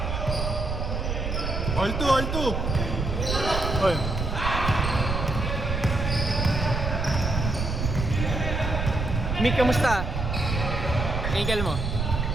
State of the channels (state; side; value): noise; right; rumble, 2 dB below the sound